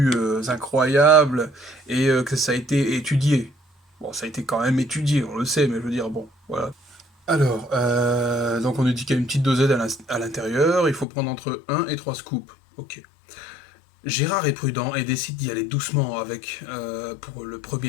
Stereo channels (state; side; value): drops out; right; at 11.1 s